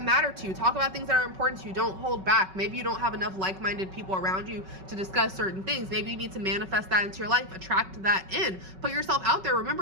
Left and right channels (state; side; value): late; left; 5.3 ms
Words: matter to you. Talk about things that are important to you. Don't hold back. Maybe you don't have enough like-minded people around you to discuss certain things. Maybe you need to manifest that into your life, attract that in, put yourself out there.